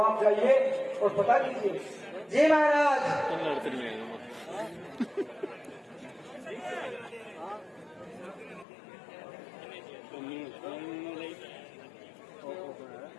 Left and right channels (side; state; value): right; drops out; at 8.7 s